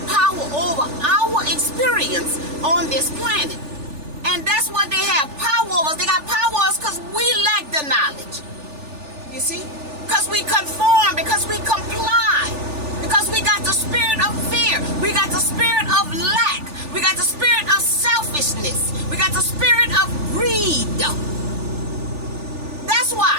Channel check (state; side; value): late; left; 3.4 ms